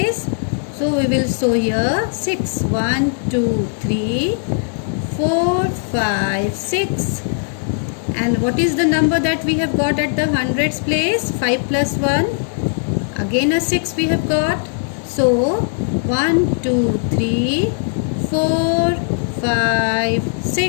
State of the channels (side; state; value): right; silent; 64 dB below the other